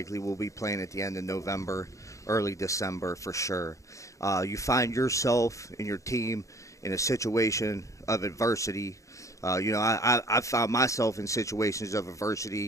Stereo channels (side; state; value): right; late; 0.15 ms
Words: will be playing at the end of November, early December for sure. You find yourself and your team in a situation of adversity. I've found myself in situations of